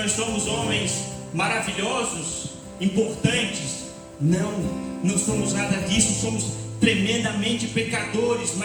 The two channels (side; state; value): both; identical; correlation 1.00